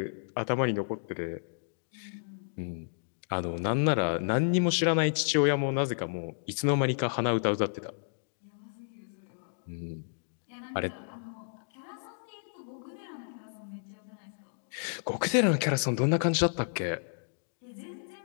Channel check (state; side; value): silent; right; digital silence